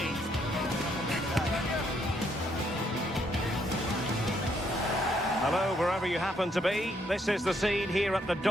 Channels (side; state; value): both; normal; correlation 0.72